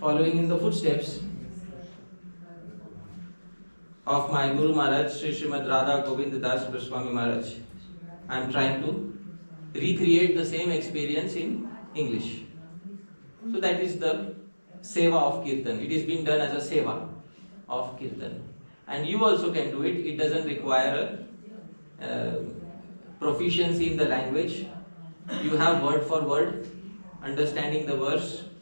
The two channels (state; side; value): inverted; both; correlation -1.00